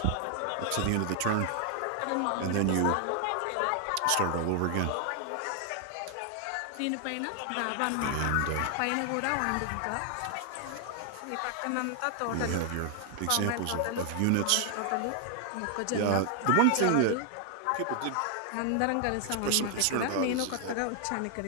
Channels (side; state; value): both; different; correlation 0.00